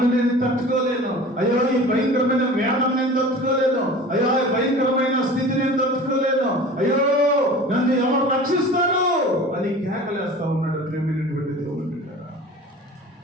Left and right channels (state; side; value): normal; both; correlation 0.39